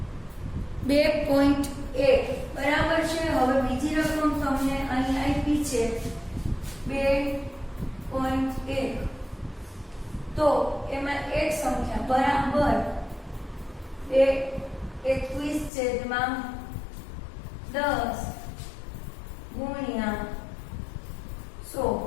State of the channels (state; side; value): drops out; right; at 15.7 s